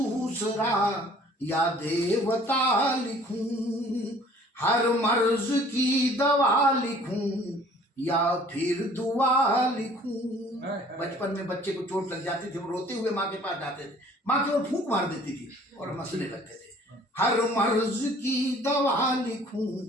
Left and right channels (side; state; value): both; normal; correlation 0.53